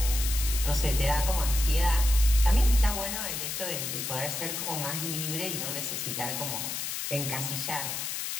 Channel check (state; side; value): noise; left; hiss, 4 dB below the sound